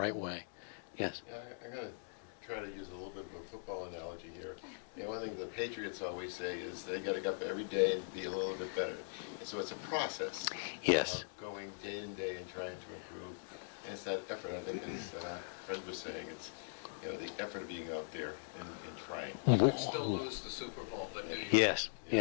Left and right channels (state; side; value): silent; right; digital silence